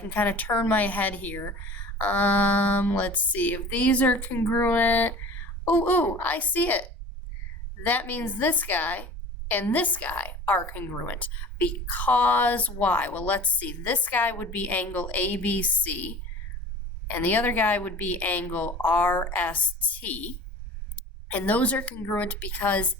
kind of turn my head here, let's see. If these are congruent, I see it. That means this guy and this guy are congruent. Because why? Well, let's see. This guy would be angle ABC, and the other guy would be angle RST. And those are congruent because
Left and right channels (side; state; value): both; normal; correlation 0.41